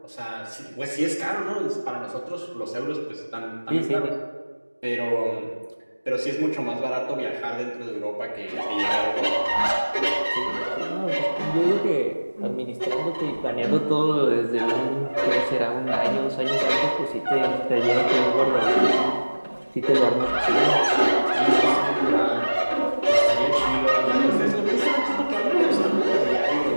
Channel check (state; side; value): inverted; both; correlation -1.00